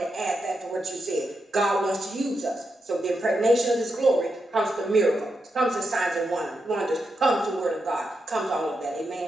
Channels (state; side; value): normal; both; correlation 0.85